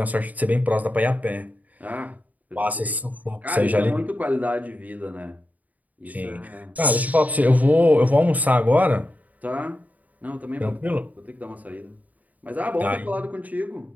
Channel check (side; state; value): left; late; 0.075 ms